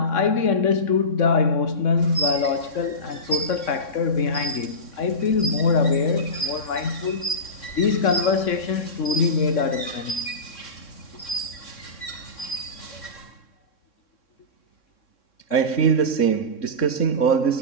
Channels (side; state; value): right; late; 3.6 ms